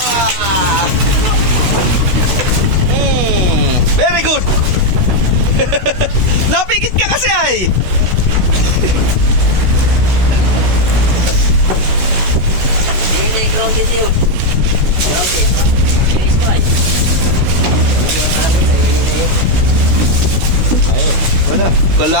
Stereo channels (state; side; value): late; left; 16 ms